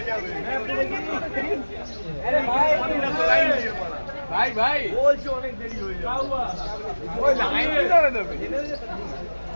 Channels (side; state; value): both; inverted; correlation -1.00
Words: ভাই ভাই বলছে অনেক দেরি হয়ে যাবে ওই লাইন ধরে দেবে